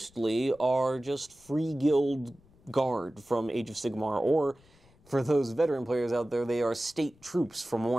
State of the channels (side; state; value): left; noise; rumble, 29 dB below the sound